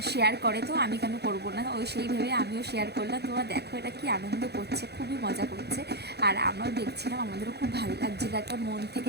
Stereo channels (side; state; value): left; late; 0.48 ms